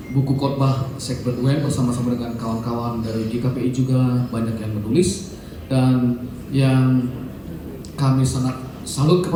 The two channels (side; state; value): both; identical; correlation 1.00